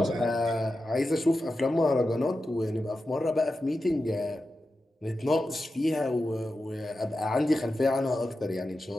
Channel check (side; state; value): both; normal; correlation 0.91